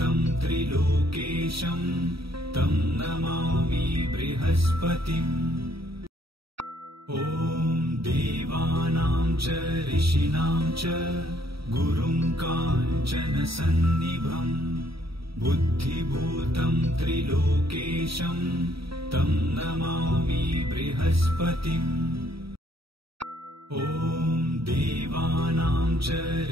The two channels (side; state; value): left; late; 0.76 ms